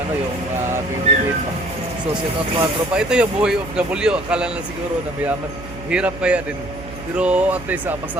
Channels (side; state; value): right; noise; hum, 13 dB below the sound